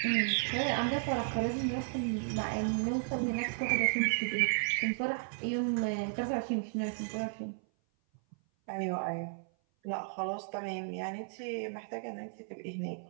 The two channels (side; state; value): left; silent; 55 dB below the other